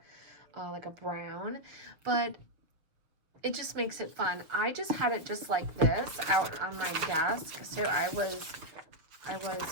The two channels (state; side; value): late; left; 6.4 ms